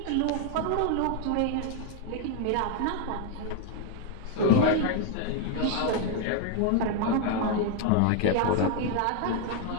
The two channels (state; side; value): different; both; correlation 0.01